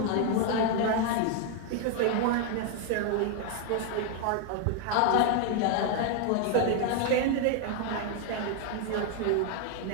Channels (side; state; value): both; different; correlation 0.00